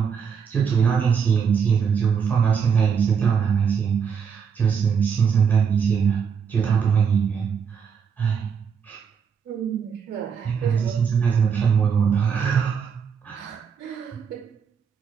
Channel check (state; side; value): quieter; left; 6.8 dB